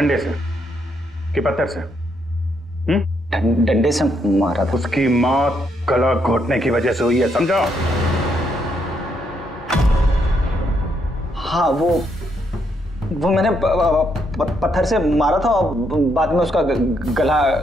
से कि पत्थर से? डंडे से मारा था। उसकी मौत गला घोटने की वजह से हुई है, समझो? हाँ वो मैंने पत्थर से मारा था और बाद में उसका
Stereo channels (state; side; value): normal; both; correlation 0.76